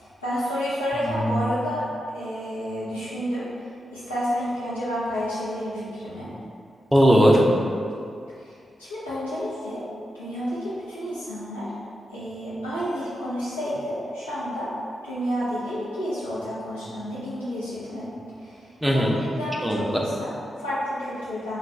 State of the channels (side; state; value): both; normal; correlation 0.88